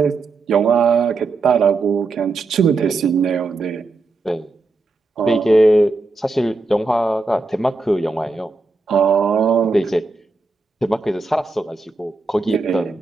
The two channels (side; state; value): left; quieter; 3.6 dB